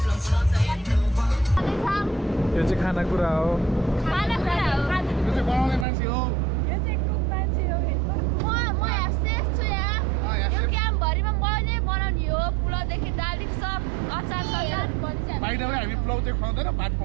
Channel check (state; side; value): drops out; left; at 5.9 s